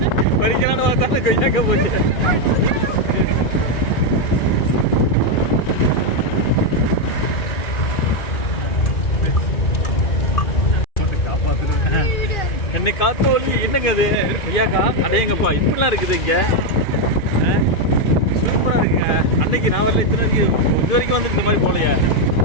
பறிக்கலான்னு பார்த்தாலும் கொய்யாக்கா போச்சு. என்னை காத்து ஒளி என்னங்க அது கொய்யாக்கா அடையங்கப்பா இப்படிலாம் இருக்குது இங்க. சூப்பரா இருக்குங்க. அன்னைக்கு நான் வரல, இது வரைக்கும் வந்து இந்த மாதிரி போலையா.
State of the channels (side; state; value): right; late; 2.4 ms